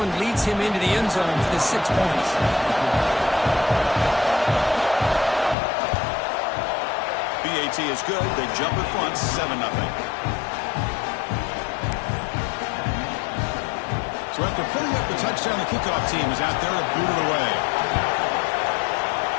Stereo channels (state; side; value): drops out; right; at 5.6 s